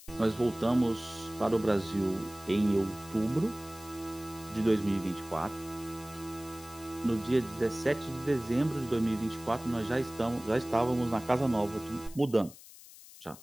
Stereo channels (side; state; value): left; noise; hiss, 19 dB below the sound